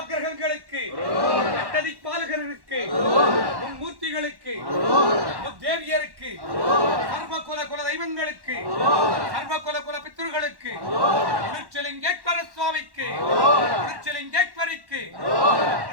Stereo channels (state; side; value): late; left; 1.1 ms